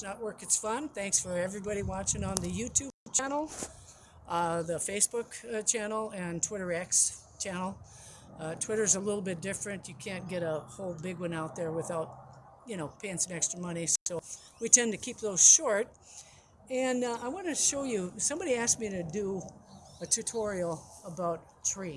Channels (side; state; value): both; identical; correlation 1.00